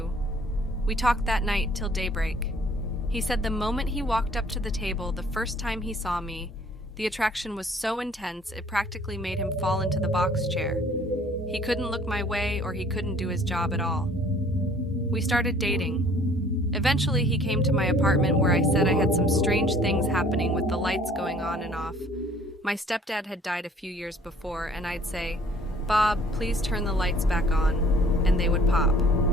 We talked that night till daybreak. He said the moment he walked up to the table, the first time he saw me, the attraction was so intense it practically made him fall into the box chair. He couldn't look my way or he couldn't do his job at all. We started dating. Eventually, he came to my apartment where I said I had some strange things happening with the lights going on and off. My stepdad had died a few years before, and I'd say, "Bob, please turn the lights back on," and they would pop.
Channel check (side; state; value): both; normal; correlation 0.56